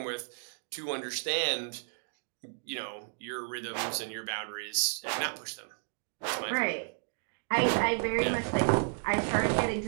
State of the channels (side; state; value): left; silent; digital silence